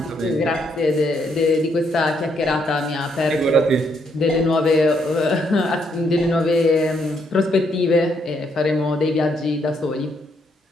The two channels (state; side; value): normal; both; correlation 0.74